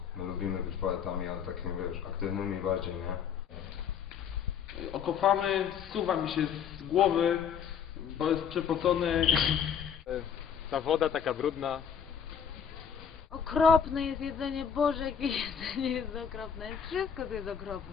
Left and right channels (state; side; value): quieter; right; 7.7 dB